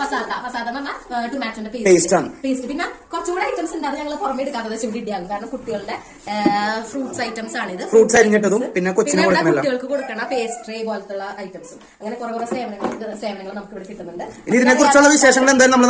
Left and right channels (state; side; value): identical; both; correlation 1.00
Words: പസാത്ത ടൊമാറ്റോന്റെ പേസ്റ്റ്, പിന്നെ കുറച്ചുകൂടെ ഐറ്റംസ് ഉണ്ട്. അത് ഞങ്ങൾ പുറമെ എടുക്കാത്തത് ചുണ്ടിയാകും. കാരണം കുട്ടികളുടെ ഫ്രൂട്ട്സ് ഐറ്റംസ് ആണിത്. ഫ്രൂട്ട്സ് അരിഞ്ഞിട്ടതും പിന്നെ കുട്ടികൾക്ക് കൊടുക്കണ പേസ്ട്രി പോലത്തുള്ള ഐറ്റംസും അങ്ങനെ കുറെ സേവനങ്ങൾ നമുക്ക് ഇവിടെ കിട്ടുന്നുണ്ട്. ഇതിനെ കുറിച്ചുള്ള വിശേഷങ്ങൾ എന്തായാലും നമ്മൾ